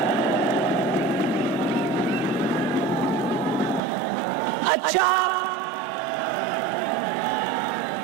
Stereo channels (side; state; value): left; drops out; at 3.8 s